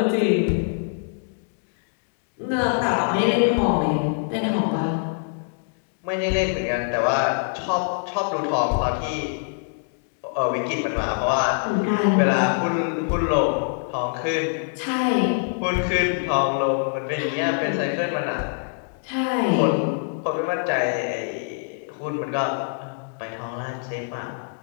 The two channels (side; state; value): right; silent; digital silence